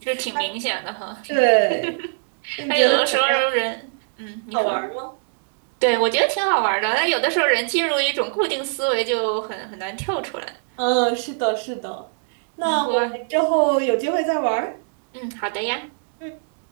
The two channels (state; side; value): silent; left; digital silence